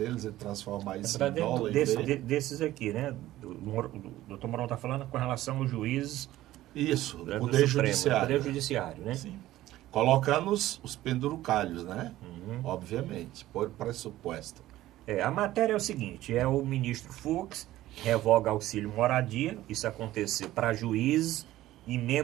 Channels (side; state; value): left; quieter; 15.2 dB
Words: e transformar isso em dólar. Desses aqui, né? O doutor Mourão está falando com relação aos juízes. Isso, do Poder Supremo, Judiciário. Poder Judiciário, né? Sim. Colocando os pendurucalhos, né? Obviamente, por pressuposto. A matéria é o seguinte: o ministro Fux revoga auxílio moradia. Isso aconteceu para juízes e